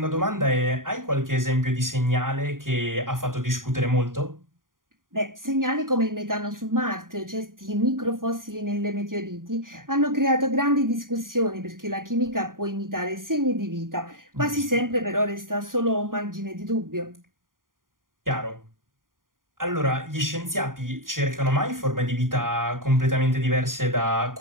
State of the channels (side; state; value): left; late; 0.90 ms